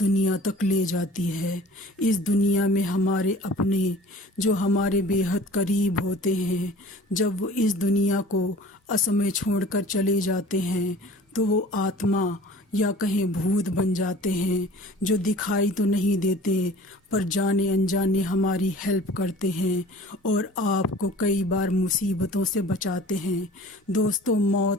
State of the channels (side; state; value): both; normal; correlation 0.45